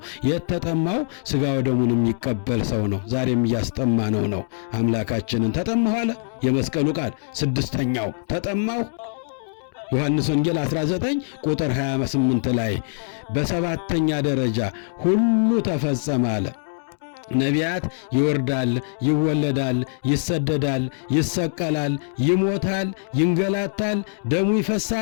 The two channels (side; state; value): right; silent; digital silence